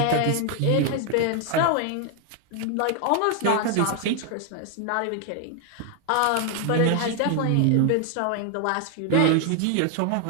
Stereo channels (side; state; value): both; different; correlation 0.00